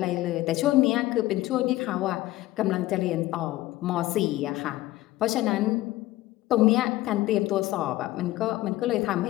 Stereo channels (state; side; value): quieter; right; 16.8 dB